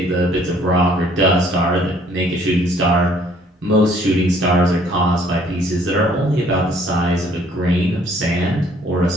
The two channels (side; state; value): both; normal; correlation 0.60